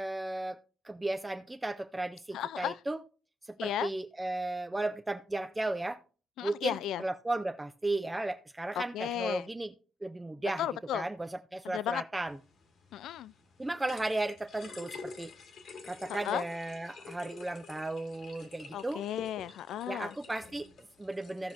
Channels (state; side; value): normal; both; correlation 0.83